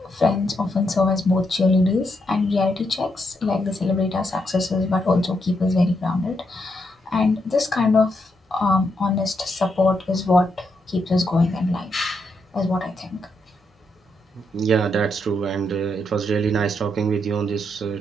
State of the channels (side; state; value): both; normal; correlation 0.80